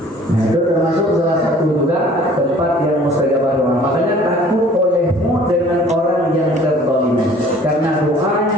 Itu termasuk salah satu juga tempat yang mustajabah doa. Makanya takut olehmu dengan orang yang terzalimi, karena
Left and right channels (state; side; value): normal; both; correlation 0.52